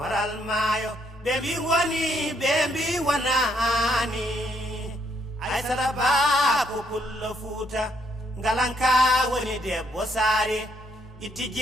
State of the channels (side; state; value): both; normal; correlation 0.72